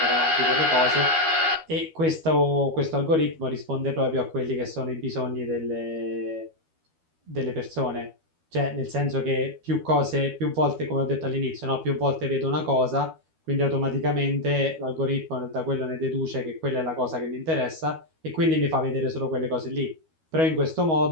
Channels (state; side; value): late; left; 12 ms